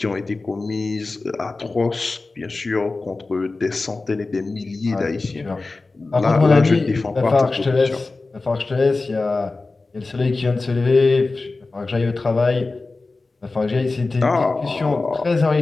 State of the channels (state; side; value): quieter; right; 3.5 dB